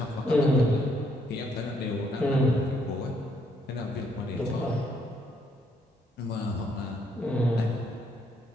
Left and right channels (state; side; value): normal; both; correlation 0.72